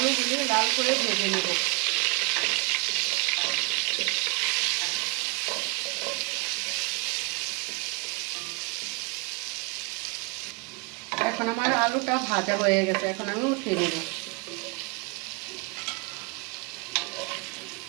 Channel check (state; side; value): quieter; left; 30.8 dB